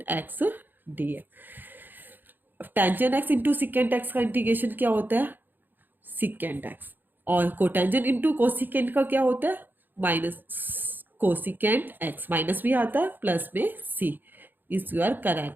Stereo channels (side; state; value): left; late; 0.091 ms